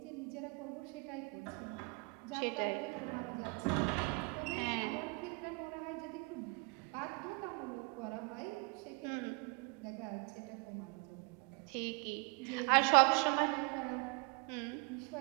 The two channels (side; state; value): left; quieter; 31.2 dB